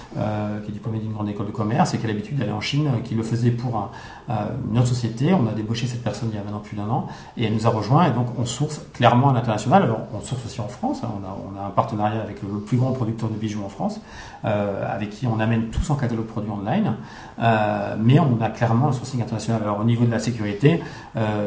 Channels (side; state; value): both; identical; correlation 1.00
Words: qui est diplômée d'une grande école de commerce et qui a l'habitude d'aller en Chine, qui le faisait pour une autre société. On a débauché cette personne il y a maintenant plus d'1 an et elle nous a rejoint et donc on source clairement à l'international. Alors on source aussi en France, hein. On a un partenariat avec le plus grand producteur de bijoux en France, avec qui on amène tout son catalogue produit online, mais on a clairement un sourcing international. Alors au niveau de la sécurité, on